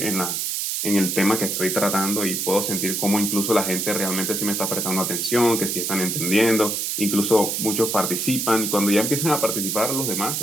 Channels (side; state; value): right; noise; hiss, 1 dB below the sound